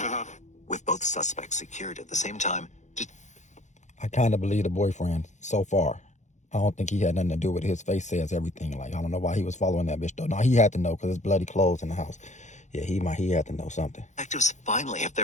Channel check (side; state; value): right; late; 0.34 ms